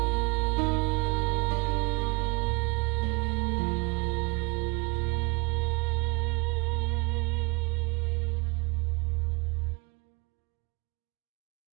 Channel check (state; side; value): quieter; left; 27.9 dB